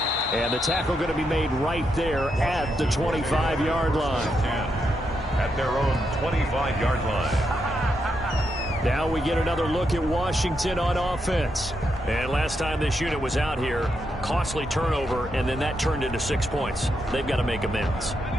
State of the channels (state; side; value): normal; both; correlation 0.82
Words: And the tackle going to be made right there at the 25-yard line. At their own 25-yard line. Now we get another look at Washington on offense. And last time this unit was out here, costly turnover, and then that turned into 6 points. They've got to make amends.